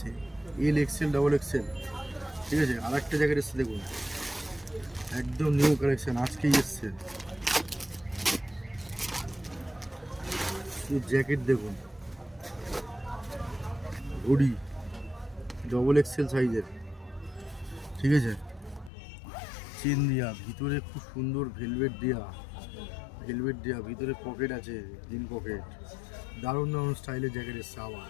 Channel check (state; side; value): drops out; right; at 18.9 s